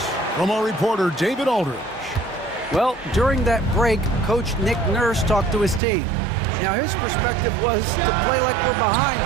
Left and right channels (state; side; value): drops out; left; at 5.8 s